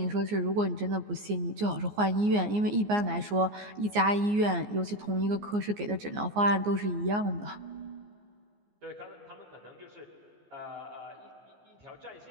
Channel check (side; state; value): left; late; 14 ms